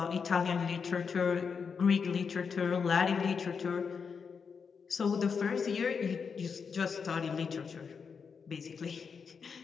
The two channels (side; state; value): right; quieter; 5.9 dB